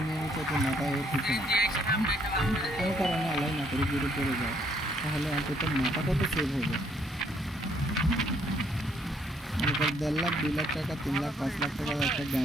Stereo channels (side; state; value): both; normal; correlation 0.68